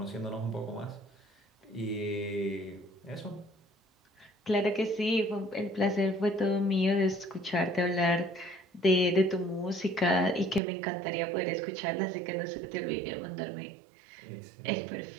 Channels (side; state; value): left; drops out; at 10.6 s